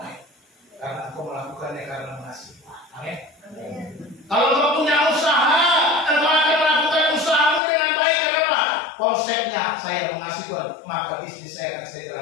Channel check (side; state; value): right; drops out; at 7.6 s